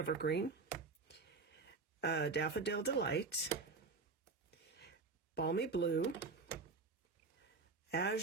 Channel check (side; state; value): left; quieter; 4.2 dB